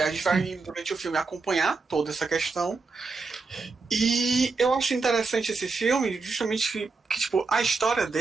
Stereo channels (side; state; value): left; quieter; 4.2 dB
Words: gente vai, durante o filme, acompanhar toda essa questão. E eu acho interessante esse filme, justamente que tipo, a história